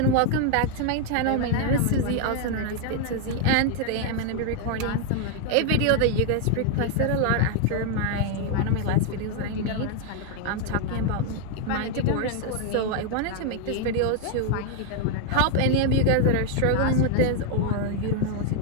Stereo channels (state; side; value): different; both; correlation 0.00